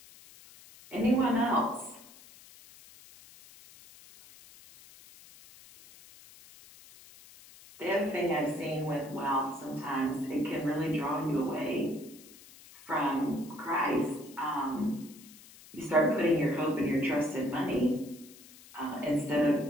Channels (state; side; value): noise; left; hiss, 21 dB below the sound